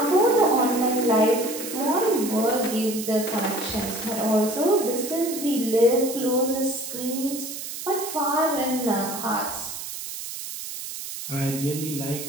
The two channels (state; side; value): noise; right; hiss, 8 dB below the sound